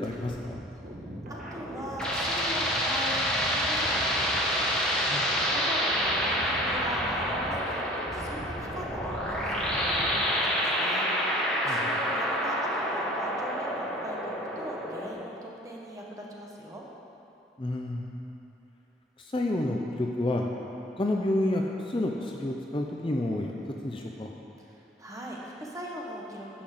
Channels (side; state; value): both; normal; correlation 0.48